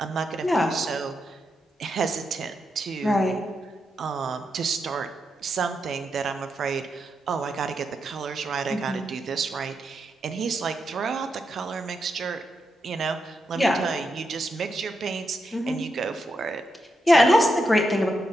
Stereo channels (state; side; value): normal; both; correlation 0.84